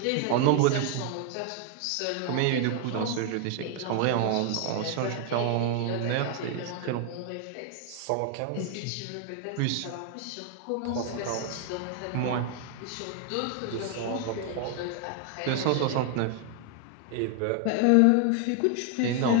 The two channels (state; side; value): different; both; correlation 0.00